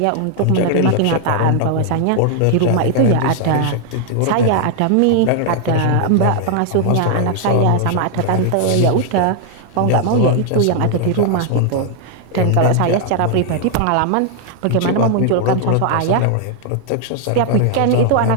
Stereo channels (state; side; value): different; both; correlation 0.00